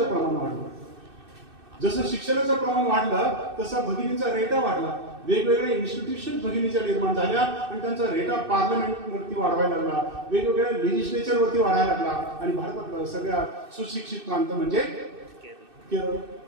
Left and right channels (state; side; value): late; left; 2.6 ms